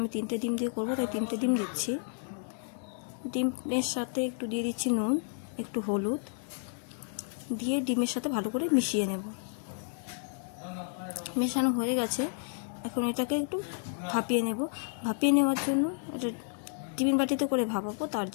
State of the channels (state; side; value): silent; right; 57 dB below the other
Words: 3টে ডিম দিয়ে করবো, তাই 3টে ডিম দিচ্ছি। ডিমের সাথে একটু দিয়ে দিচ্ছি নুন, একটু হলুদ দিয়ে ডিমের সাথে ভালো করে মিশিয়ে নেব। মেশানো হয়ে গেছে, এখন এটাকে একটু ভাপিয়ে নেব। ভাপিয়ে নেওয়ার জন্য এটা টিফিন বাটিতে করে ভাপাবো। তার